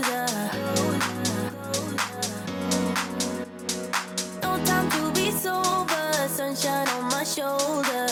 No time to be sober, sunshine on my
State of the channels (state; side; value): identical; both; correlation 1.00